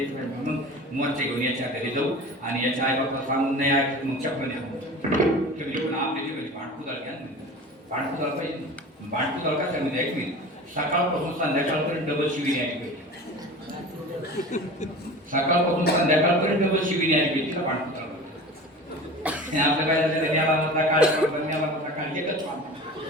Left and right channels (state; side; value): normal; both; correlation 0.36